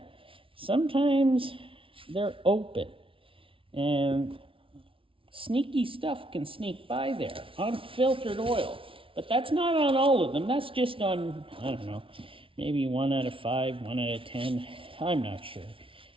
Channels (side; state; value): left; late; 0.25 ms